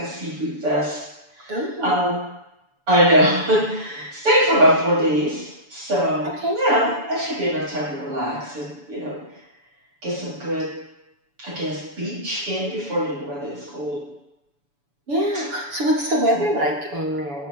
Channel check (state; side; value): late; left; 7.0 ms